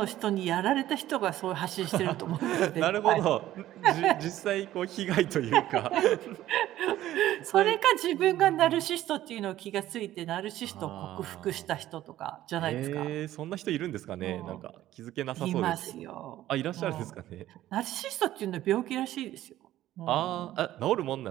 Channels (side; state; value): left; quieter; 13.9 dB